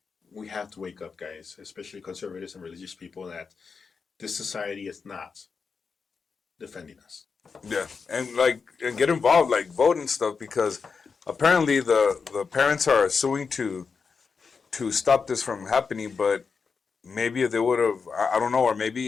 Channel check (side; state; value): right; quieter; 5.3 dB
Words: we have to wake up, guys, especially conservatives and religious people, that this society is not defending us. Yeah, and get involved, like vote and stuff, because apparently the parents are suing to stop this from happening. But maybe if they would have, I don't know, or